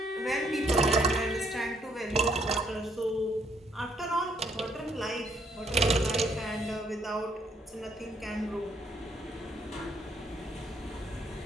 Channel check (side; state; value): both; normal; correlation 0.70